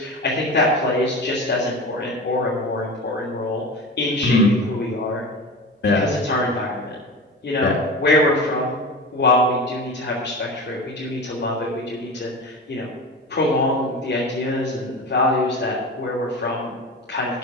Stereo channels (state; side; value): normal; both; correlation 0.29